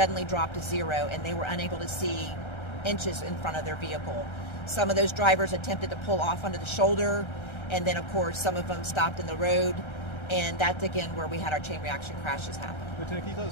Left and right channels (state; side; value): late; right; 1.3 ms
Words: dropped to zero and they were unable to see inches in front of their vehicle. Some of those drivers attempted to pull off onto the shoulder, and then of course some of them stopped in the road, and that's again where we had our chain reaction crashes happen. Lieutenant, can you tell